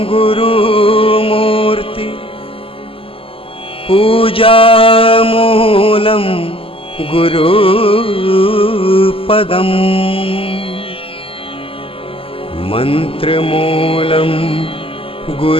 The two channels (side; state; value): right; late; 0.26 ms